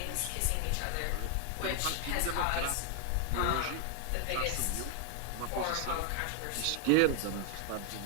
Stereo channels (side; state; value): both; different; correlation 0.00